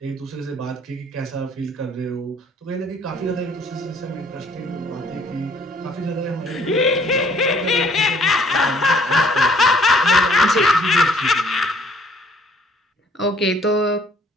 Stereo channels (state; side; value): normal; both; correlation 0.60